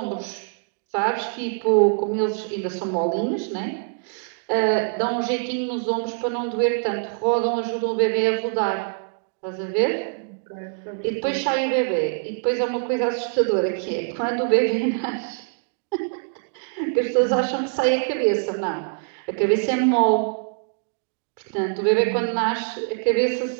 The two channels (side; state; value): left; silent; digital silence